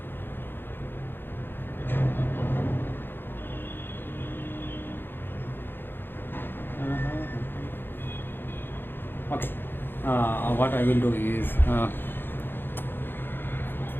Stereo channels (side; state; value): right; late; 0.10 ms